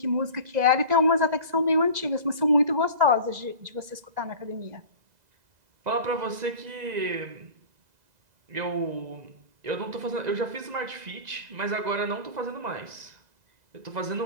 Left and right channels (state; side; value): late; left; 2.0 ms